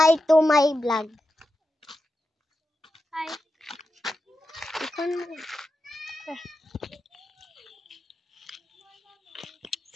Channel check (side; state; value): both; normal; correlation 0.89